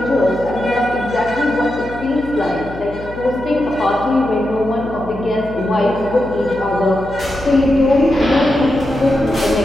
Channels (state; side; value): noise; left; hum, 14 dB below the sound